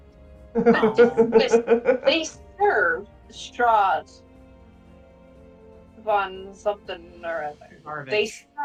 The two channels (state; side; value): identical; both; correlation 1.00